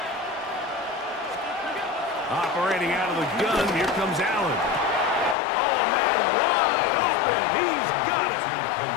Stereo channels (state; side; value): drops out; right; at 5.4 s